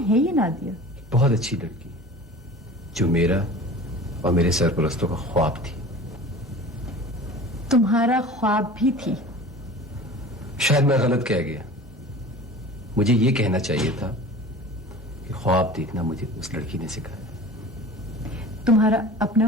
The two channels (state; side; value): normal; both; correlation 0.39